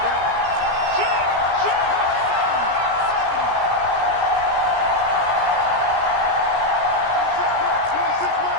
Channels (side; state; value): left; late; 17 ms